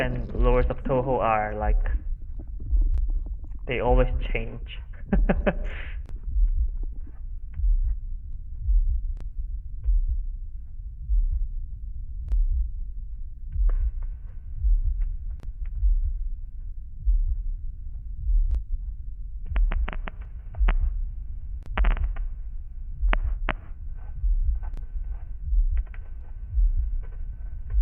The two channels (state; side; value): identical; both; correlation 1.00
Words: lures of Touhou are like they always change.